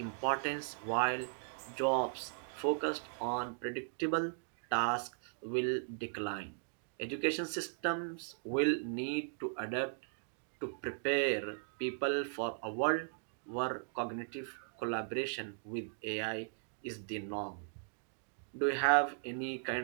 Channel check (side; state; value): left; silent; digital silence